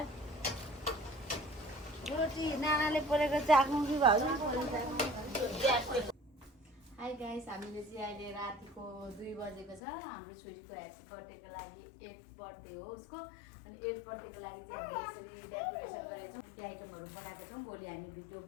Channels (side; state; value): right; drops out; at 9.8 s